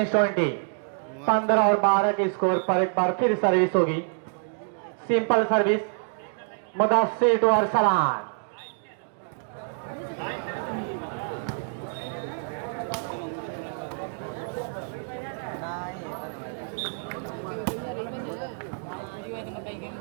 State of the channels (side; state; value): left; silent; digital silence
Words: 20, 15 और 12 के स्कोर पर एक बार फिर सर्विस होगी। Simple service, Mudassir to Arsalan,